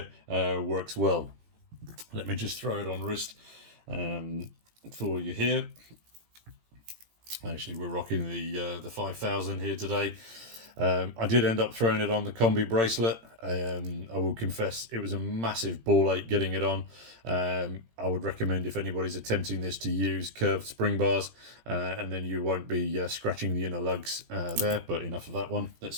works well. Let me just throw it on wrist for you here. Actually, we're rocking the 5000 here today. I did end up throwing it on the combi bracelet. I will confess it was a massive ball ache getting it on. I would recommend, if anybody's attempting this, to use curved spring bars, and then you won't be scratching the inner lugs there. But enough of that one. Let's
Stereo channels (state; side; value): late; left; 18 ms